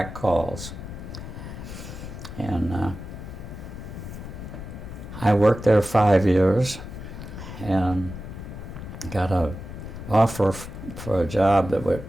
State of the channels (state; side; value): noise; left; rumble, 10 dB below the sound